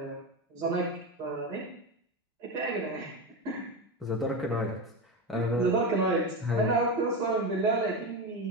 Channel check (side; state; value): both; normal; correlation 0.17